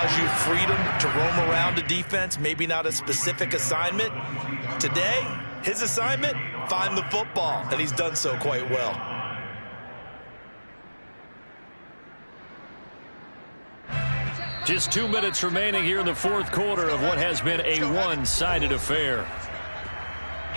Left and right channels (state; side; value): inverted; both; correlation -1.00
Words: you freedom to roam around a defense, maybe not a specific assignment. Today, his assignment, find the football, and he's done so quite well. Just 2 minutes remaining here in the fourth quarter of what has been a one-sided affair.